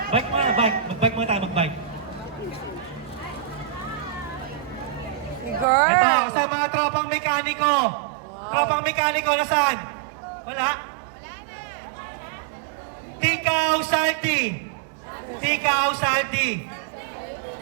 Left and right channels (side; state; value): left; drops out; at 5.7 s